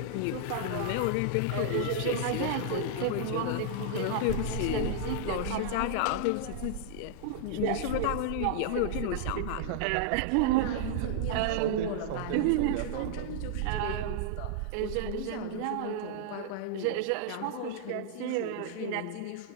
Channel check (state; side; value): different; both; correlation -0.01